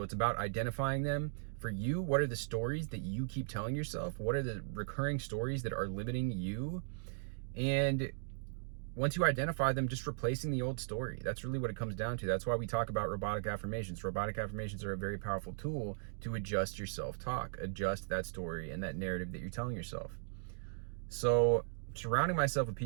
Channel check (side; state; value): left; silent; digital silence